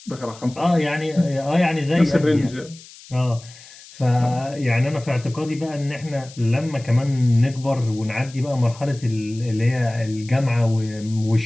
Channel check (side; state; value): left; noise; hiss, 20 dB below the sound